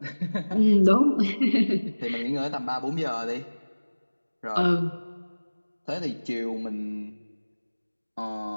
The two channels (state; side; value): inverted; both; correlation -1.00